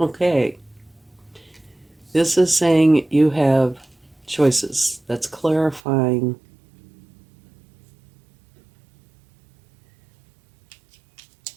This is saying you have choices. That's clarifying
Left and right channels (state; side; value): drops out; left; at 5.8 s